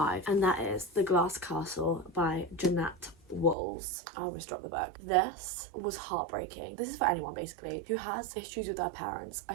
and that is The Glass Castle by Jeanette. I almost dropped the book. This was heartbreaking. This is for anyone basically who has issues with their parents.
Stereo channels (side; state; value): left; drops out; at 3.6 s